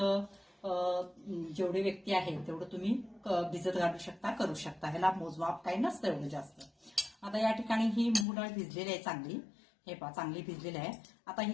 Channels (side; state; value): right; drops out; at 8.2 s